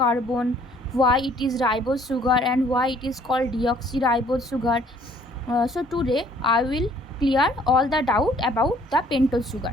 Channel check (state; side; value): normal; both; correlation 0.59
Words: why it is ribose sugar and why it is called deoxyribose sugar. So today I will clear all the doubt about the pentose